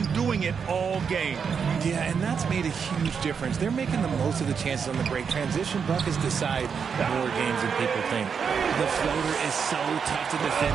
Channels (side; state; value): left; quieter; 6.5 dB